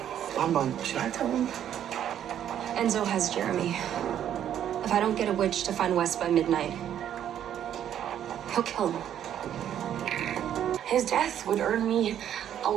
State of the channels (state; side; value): quieter; left; 10.3 dB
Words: Should I tell him? Enzo has Jeremy. If I don't get a witch to find Wes by midnight, he'll kill him. His death would earn me a